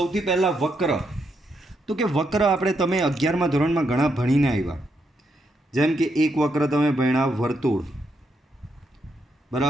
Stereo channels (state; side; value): normal; both; correlation 0.79